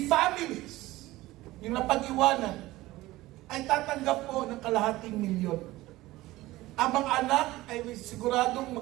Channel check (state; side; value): quieter; left; 18.0 dB